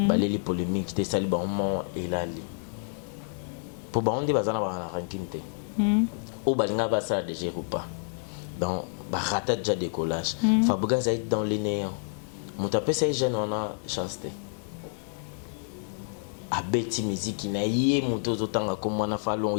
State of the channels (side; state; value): right; silent; 59 dB below the other